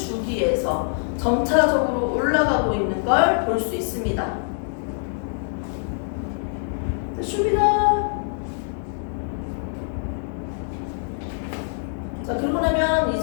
점차적으로 올라가고 있는 걸 볼 수 있습니다. 됐습니다. 자, 그러고 나면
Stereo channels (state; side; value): silent; right; digital silence